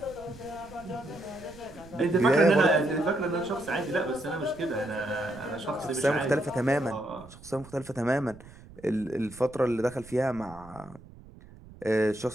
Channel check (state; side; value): noise; right; rumble, 20 dB below the sound